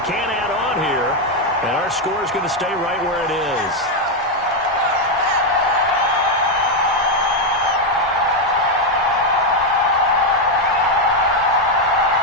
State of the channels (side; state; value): both; normal; correlation 0.03